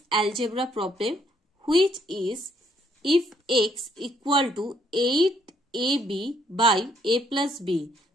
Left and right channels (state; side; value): normal; both; correlation 0.69